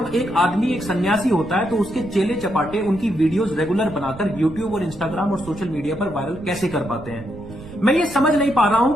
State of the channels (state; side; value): noise; right; rumble, 17 dB below the sound